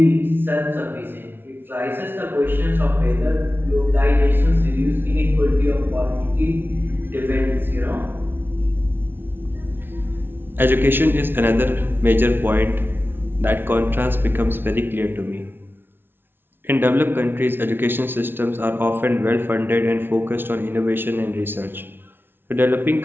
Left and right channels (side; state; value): left; late; 0.10 ms